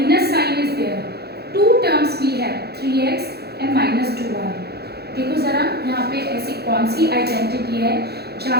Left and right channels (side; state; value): left; late; 0.47 ms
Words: sign is there. Two terms we have 3x and minus 2y. देखो ज़रा यहाँ पे ऐसी कौन सी identity है जहाँ